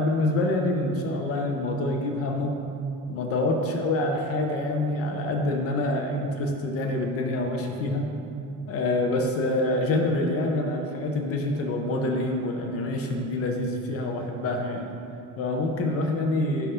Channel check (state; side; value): normal; both; correlation 0.29